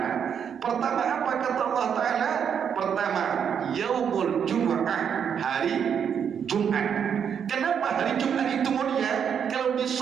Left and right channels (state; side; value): quieter; left; 7.7 dB